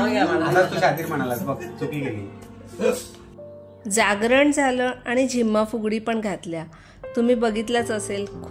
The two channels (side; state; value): both; identical; correlation 1.00